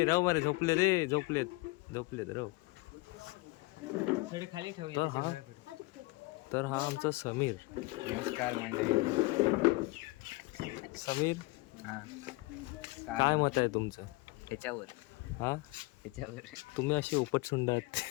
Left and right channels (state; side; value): quieter; right; 23.5 dB